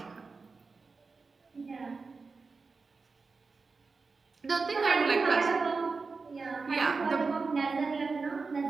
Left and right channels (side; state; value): left; quieter; 4.3 dB